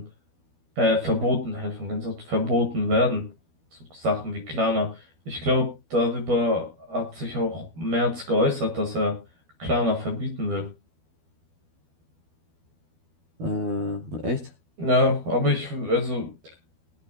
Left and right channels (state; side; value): late; left; 12 ms